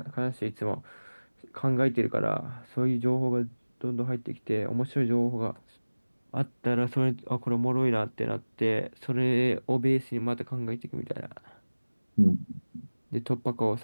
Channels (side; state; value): both; inverted; correlation -1.00